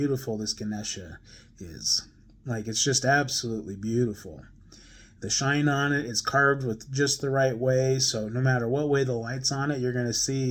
this Ganesha is. Like, it's just absolutely beautiful. The shine on it is carved with just the right way, so no matter what way the light's on it, you're going to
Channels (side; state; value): both; identical; correlation 1.00